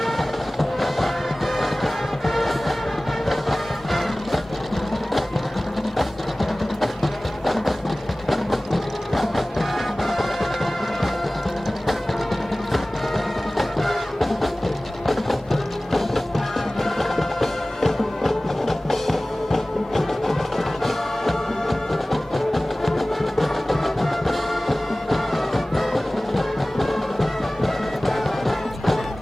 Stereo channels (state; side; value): normal; both; correlation 0.98